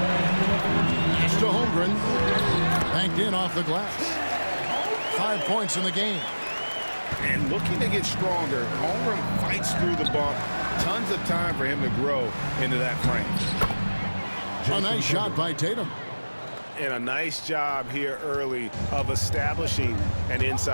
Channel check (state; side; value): inverted; both; correlation -1.00